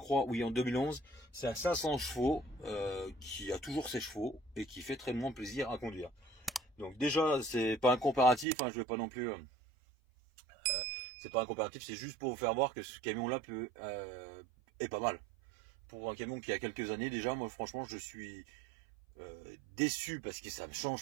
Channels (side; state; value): left; drops out; at 8.5 s